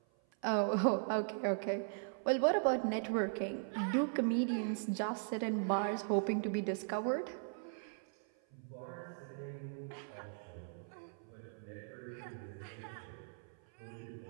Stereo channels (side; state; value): left; silent; 52 dB below the other